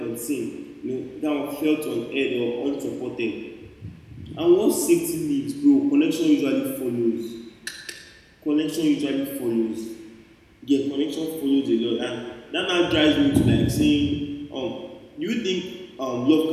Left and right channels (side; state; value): both; identical; correlation 1.00